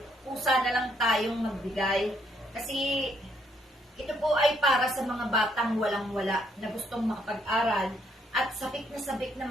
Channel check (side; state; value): both; normal; correlation 0.71